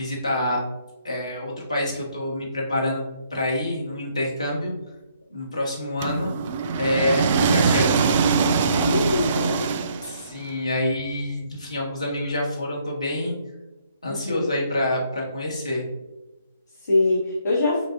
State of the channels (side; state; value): both; inverted; correlation -0.68